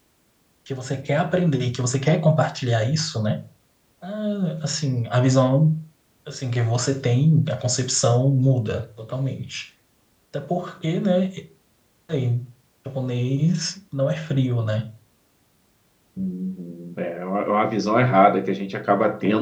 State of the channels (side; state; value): both; identical; correlation 1.00